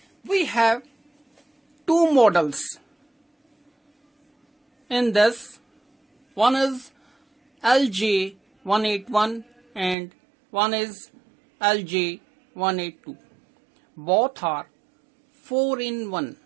We have two models in this. One is LJ-181 and one is LJ-182. Both are 4-in-1.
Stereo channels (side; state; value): left; drops out; at 10.0 s